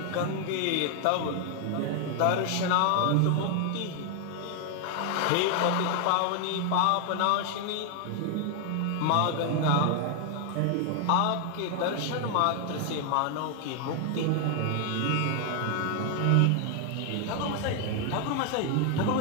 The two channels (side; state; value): both; different; correlation 0.00